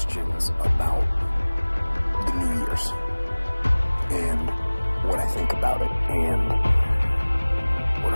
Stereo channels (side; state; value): both; inverted; correlation -1.00